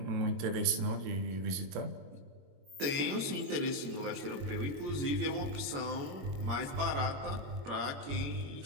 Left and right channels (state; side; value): late; left; 21 ms